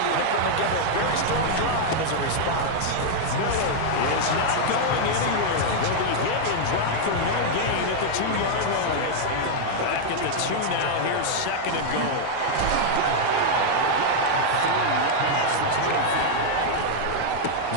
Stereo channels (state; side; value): different; both; correlation -0.01